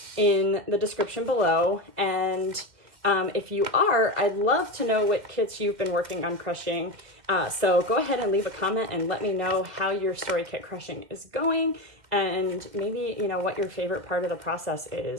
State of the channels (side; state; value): left; late; 2.0 ms